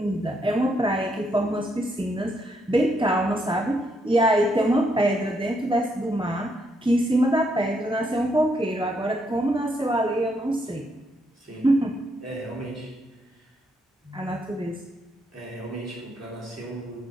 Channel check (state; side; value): normal; both; correlation 0.76